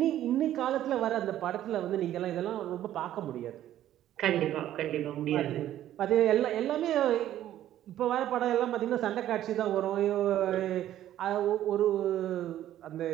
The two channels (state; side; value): quieter; left; 12.4 dB